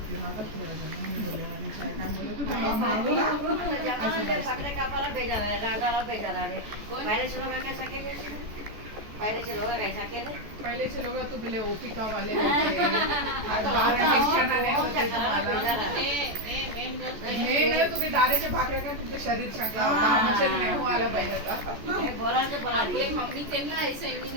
राहतात थोडा जण मी बोलले आणि काय काय बोलले तू त्यांना मागवला पहिलेचे लोक तू बोले ओपिका वाले होते आज बाहेर शिक्षणाने होते तुम्हाला नाही तुम्ही दारेचे भाकरे का तुमचं शरीर चांगलं होतं आमचे नाही हो आलं पाहिजे आता. आपली मम्मी त्यांना ऐसा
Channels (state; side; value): late; left; 14 ms